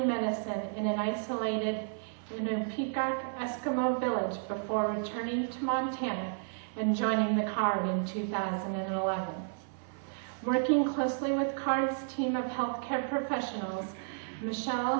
medicine in an isolated Peacock Eskimo village before returning to Montana and joining the CARD in 2011. Working closely with CARD's team of healthcare professionals, Michelle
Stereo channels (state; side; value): silent; left; 56 dB below the other